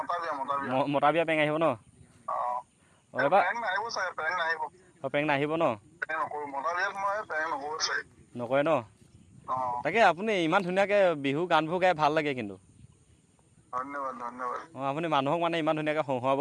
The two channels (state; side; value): identical; both; correlation 1.00